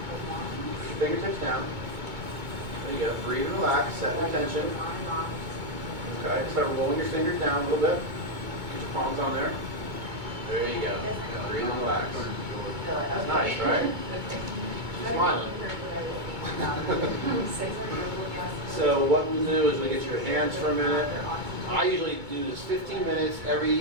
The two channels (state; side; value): late; left; 2.2 ms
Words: Fingertips down. There you go. Breathe and relax. Set the tension. Okay. Start rolling your fingers down a little bit. Get your palms on there. There you go. Breathe and relax. That's nice, right? Smiling. So what we'll do is we'll get your hands for a minute. I usually do this 15 minutes